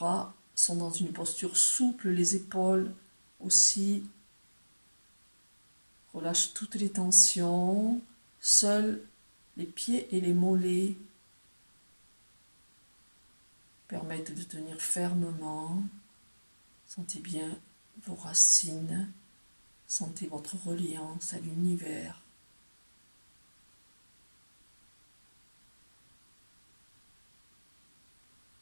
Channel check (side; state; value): both; inverted; correlation -1.00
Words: sont dans une posture souple, les épaules aussi. Relâche toutes les tensions. Seuls les pieds et les mollets permettent de tenir fermement. Sentez bien vos racines. Sentez votre reliance à l'univers.